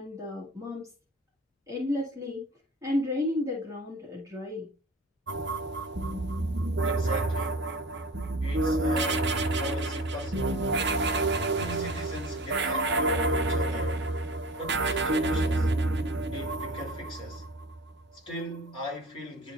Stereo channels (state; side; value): normal; both; correlation 0.38